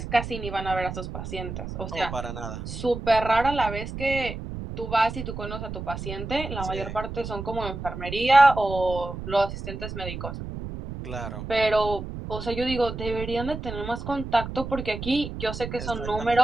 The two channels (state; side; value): noise; right; rumble, 8 dB below the sound